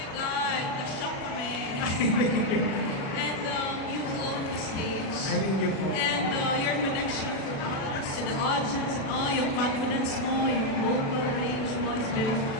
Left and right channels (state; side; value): late; right; 36 ms